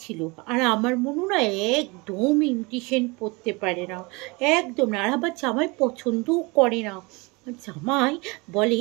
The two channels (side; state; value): left; quieter; 26.5 dB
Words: ছিল, আর আমার মনু না একদম ইমিটেশন পরতে পারে না, একদম না। আর আবার জামাই পছন্দও করে না। জামাই বলে